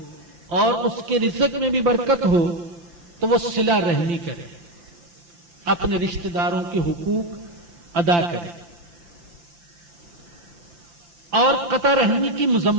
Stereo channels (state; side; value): late; left; 5.8 ms